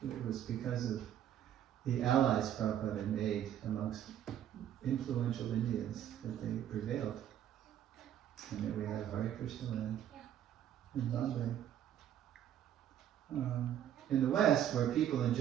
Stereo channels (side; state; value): left; quieter; 10.6 dB